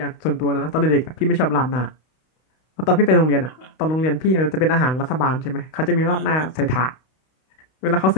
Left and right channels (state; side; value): late; right; 32 ms